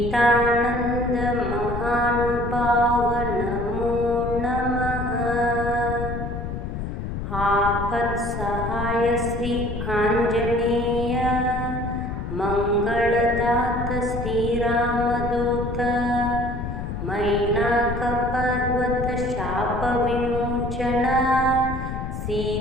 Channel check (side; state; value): left; noise; rumble, 5 dB below the sound